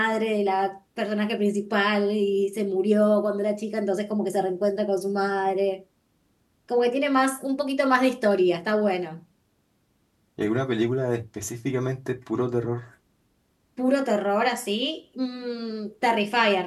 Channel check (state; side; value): identical; both; correlation 1.00